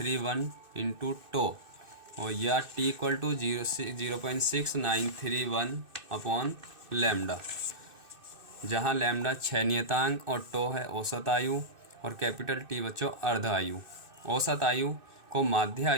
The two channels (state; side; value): late; left; 2.6 ms